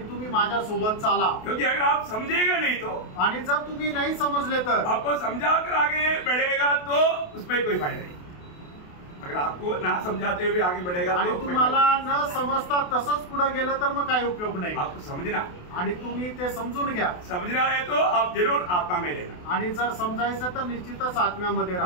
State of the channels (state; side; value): late; right; 28 ms